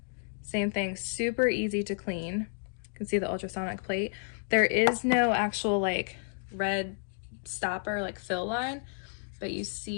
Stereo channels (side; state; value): right; silent; digital silence